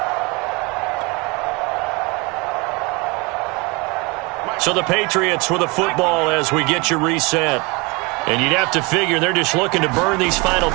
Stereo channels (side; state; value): left; quieter; 27.4 dB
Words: So the Patriots with the football as we get you reset. And you'd have to figure they're just looking to burn these final